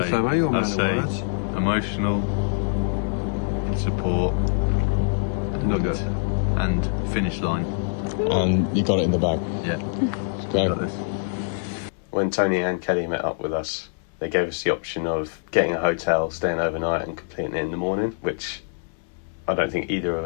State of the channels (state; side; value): silent; right; digital silence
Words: say emotional support, Nugget. and finish line. And you got it in the bag. Yeah. Okay. Got this. When Tony and Kelly met up with us, they gave us the option of getting a hotel, staying overnight and completing it in the morning, which I don't think either of